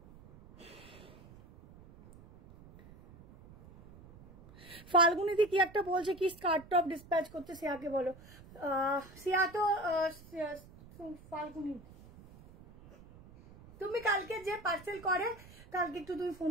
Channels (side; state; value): right; noise; rumble, 21 dB below the sound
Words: ফাল্গুনিদি কি একটা বলছে কি স্কার্ট টপ ডিসপ্যাচ করতে, সিয়াকে বলো। সিয়া তো ফাল্গুনি, তুমি কালকে যে পার্সেল করে কালকে একটু তুমি ফোন